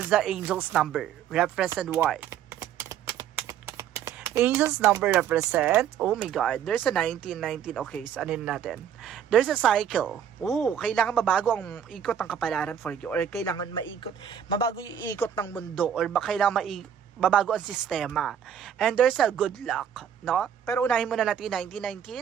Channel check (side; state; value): left; quieter; 9.0 dB